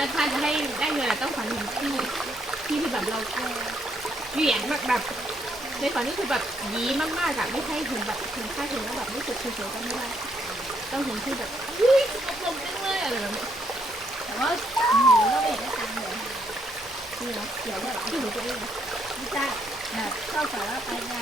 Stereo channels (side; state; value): both; normal; correlation 0.74